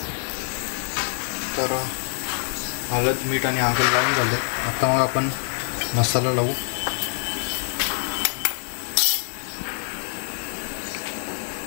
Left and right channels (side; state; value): right; silent; 62 dB below the other